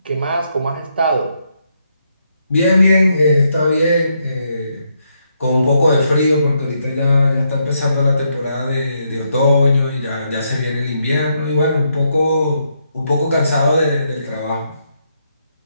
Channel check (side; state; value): both; inverted; correlation -0.78